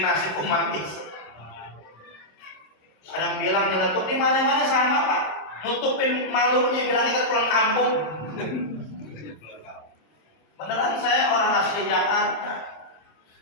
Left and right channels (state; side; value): late; right; 26 ms